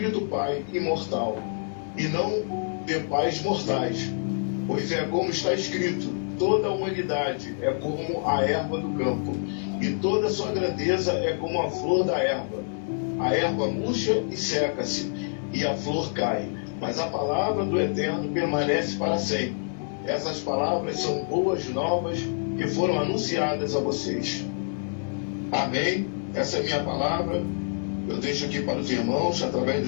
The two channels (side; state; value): right; silent; digital silence